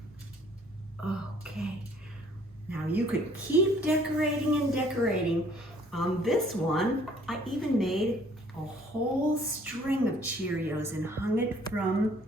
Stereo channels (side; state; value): both; normal; correlation 0.59